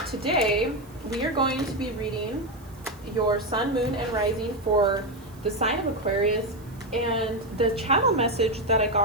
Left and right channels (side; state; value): right; noise; hiss, 26 dB below the sound